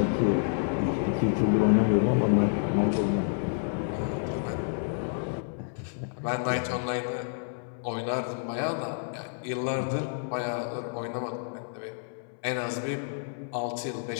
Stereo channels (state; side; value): silent; right; 58 dB below the other